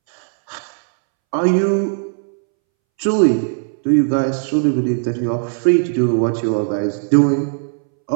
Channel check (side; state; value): left; silent; 66 dB below the other